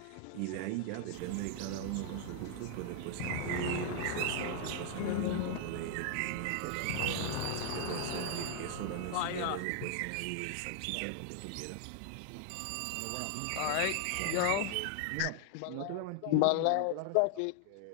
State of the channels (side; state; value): both; different; correlation 0.00